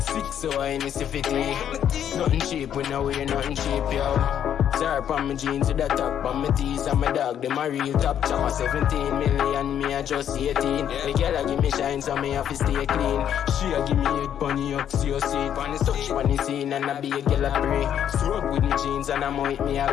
so I miss 50. Nothing cheap, we know we're nothing cheap, yo. Zara on my jeans with a top on my teeth and my dog. Them a real top choppa 17 million, me a just 18. The girl a give me shine so me have to stay clean. She a give me head pon the axion seat. Touch pon the scene and a be a girl a pree. Stroke with me jeans and I'm with me a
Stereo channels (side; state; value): right; quieter; 9.6 dB